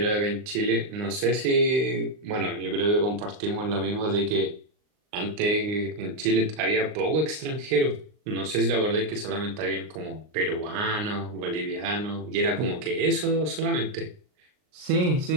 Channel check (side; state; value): left; late; 39 ms